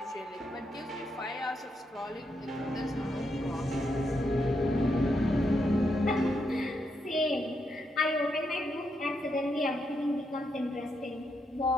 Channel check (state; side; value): normal; both; correlation 0.81